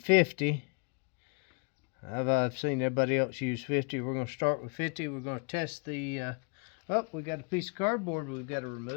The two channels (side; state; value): right; quieter; 35.1 dB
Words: 50. I've seen everybody else use 50. We're going to start with 50. We're going to test the oh, we got a piece of cardboard we've got to